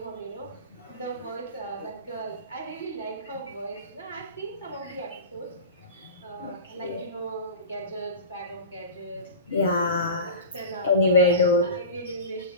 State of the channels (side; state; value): both; inverted; correlation -0.32